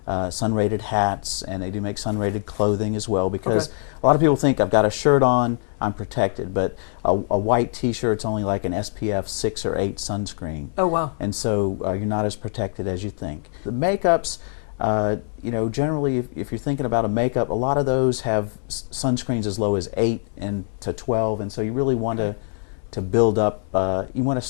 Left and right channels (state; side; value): silent; right; 63 dB below the other